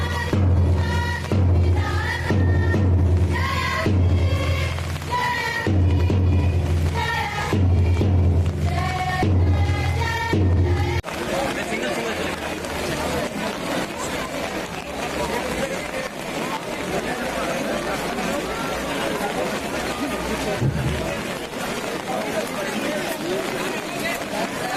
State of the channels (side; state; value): both; identical; correlation 1.00